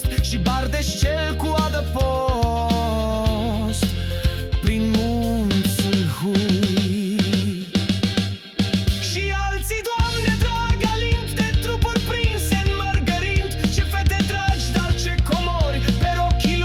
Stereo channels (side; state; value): both; identical; correlation 1.00